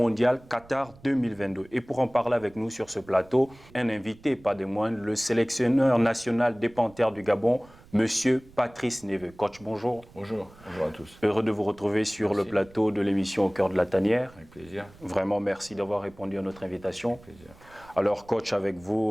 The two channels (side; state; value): right; noise; rumble, 24 dB below the sound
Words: Qatar 2022. Et pour en parler avec nous sur ce plateau, un invité, pas des moindres, le sélectionneur national des Panthères du Gabon, Monsieur Patrice Neveu. Coach, bonjour. Bonjour, bonjour à tous. Heureux de vous retrouver sur le plateau de l'émission Au cœur de la tanière. Avec plaisir. Vraiment, merci d'avoir répondu à notre invitation. Avec plaisir. Alors, coach, avec